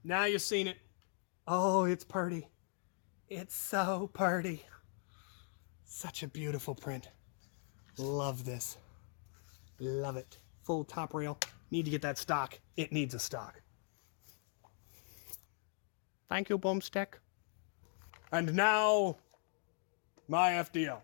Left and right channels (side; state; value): right; silent; 51 dB below the other